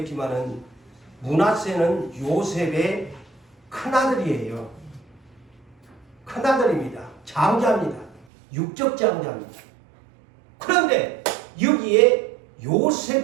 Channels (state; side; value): drops out; left; at 8.2 s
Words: 므낫세는 요셉의 큰아들이에요. 큰아들입니다. 장자입니다. 육적 장자입니다. 그런데 여기에